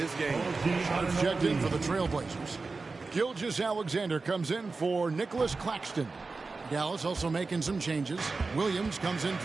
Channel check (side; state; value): left; quieter; 3.9 dB